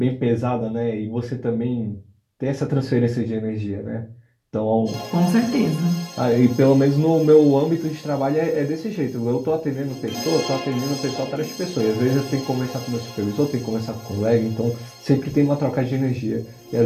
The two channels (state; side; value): identical; both; correlation 1.00